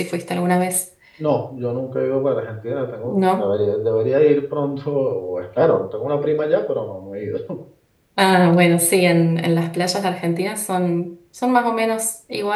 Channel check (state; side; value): identical; both; correlation 1.00